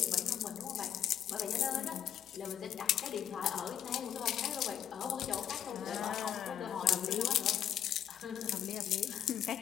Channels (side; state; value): right; quieter; 10.0 dB